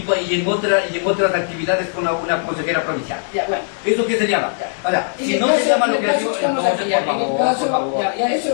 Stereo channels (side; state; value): right; silent; digital silence